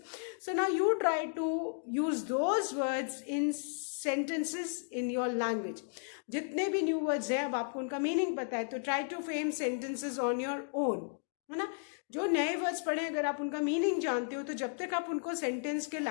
so now you try to use those words in sentences in your language. जितने भी new words हैं, अब आपको उनका meaning पता है, तो try to frame sentences on your own, है ना. जो नए वर्ड्स पढ़े, अगर आप उनका मीनिंग जानते हो, तो जब तक आप उनको सेंटेंस के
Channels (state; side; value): silent; right; digital silence